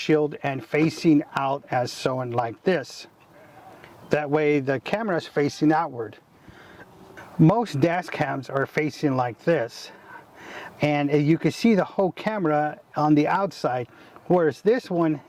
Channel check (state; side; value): identical; both; correlation 1.00